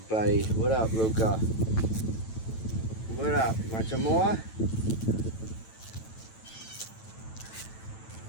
What up, Luca? What up? Want some more?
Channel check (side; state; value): right; late; 9.1 ms